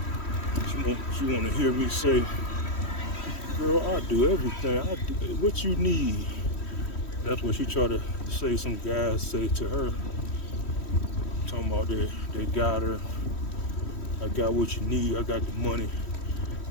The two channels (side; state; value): right; late; 3.1 ms